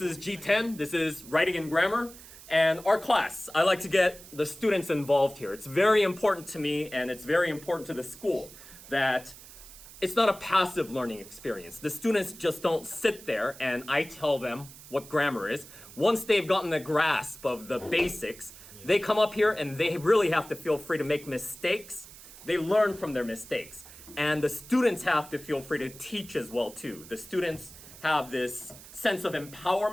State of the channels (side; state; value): right; noise; hiss, 18 dB below the sound